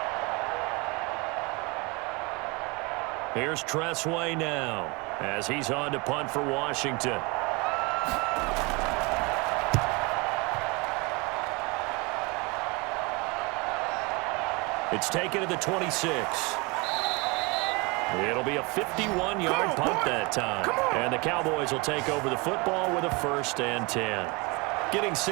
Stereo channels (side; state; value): left; quieter; 27.6 dB